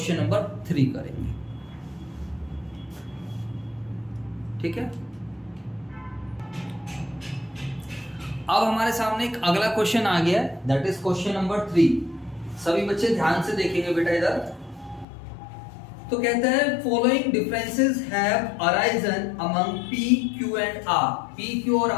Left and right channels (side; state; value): right; drops out; at 15.1 s